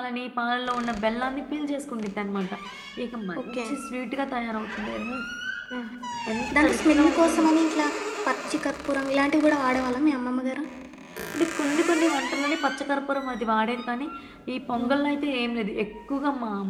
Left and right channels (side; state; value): both; identical; correlation 1.00